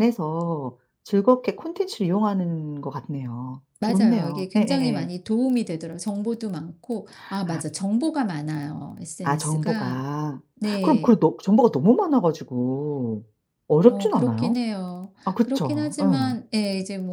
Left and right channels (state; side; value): identical; both; correlation 1.00